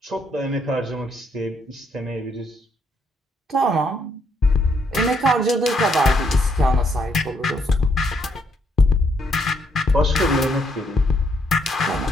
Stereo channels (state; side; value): normal; both; correlation 0.73